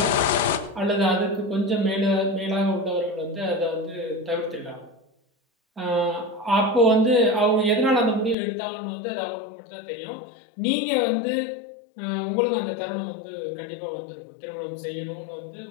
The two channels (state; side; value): drops out; right; at 8.3 s